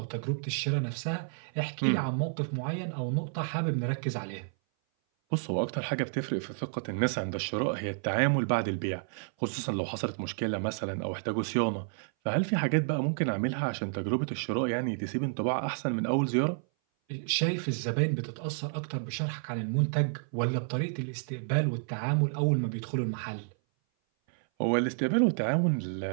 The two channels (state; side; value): silent; left; 57 dB below the other